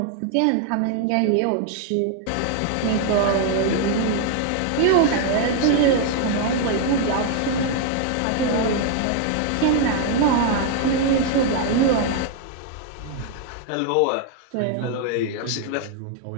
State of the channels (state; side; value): different; both; correlation 0.00